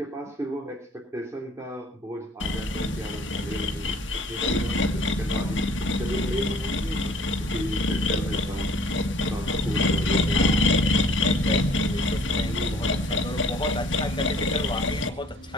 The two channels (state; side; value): normal; both; correlation 0.55